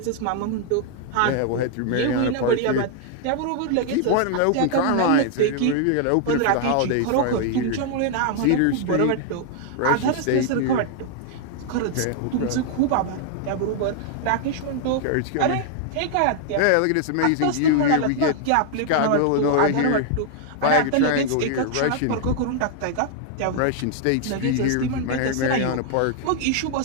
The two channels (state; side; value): different; both; correlation 0.00